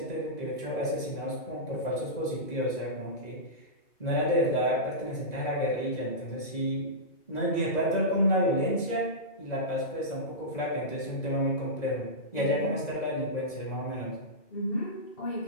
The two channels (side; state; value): right; late; 2.0 ms